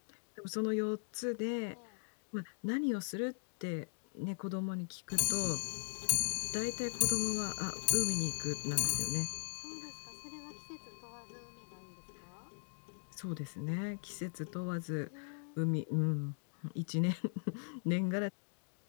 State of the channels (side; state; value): right; silent; digital silence